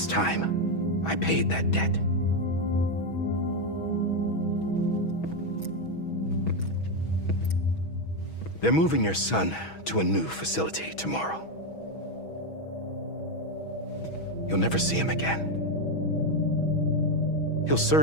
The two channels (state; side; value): late; right; 6.2 ms